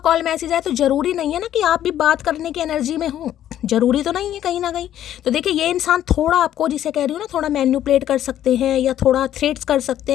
मैसेज आए तो ज़रूरी नहीं है ना कि आप भी बात करने की एनर्जी में हो, ज़रूरी तो नहीं है कहीं ना कहीं। तो देखिए ये इंसान थोड़ा आपको, जिसे कह रही हूँ ना, थोड़ा मैनिपुलेट कर सकते हैं या थोड़ा थ्रेट्स कर सकते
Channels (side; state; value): right; quieter; 11.5 dB